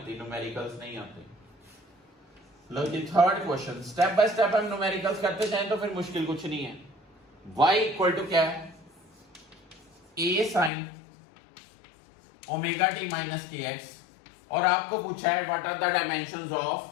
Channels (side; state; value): right; drops out; at 10.7 s